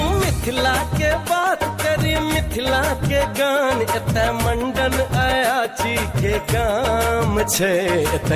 मिथिला के बात करी मिथिला के गान। एतय मंडन अयाची के काम छे,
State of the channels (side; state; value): both; identical; correlation 1.00